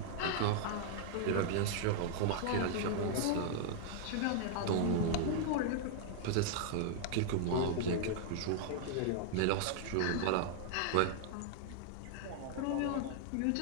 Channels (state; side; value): different; both; correlation -0.01